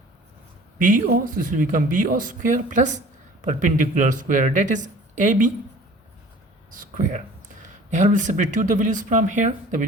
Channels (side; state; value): both; normal; correlation 0.47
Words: BO. So this will become BO square plus perpendicular square, that is AB square. Here we'll substitute the values from here. The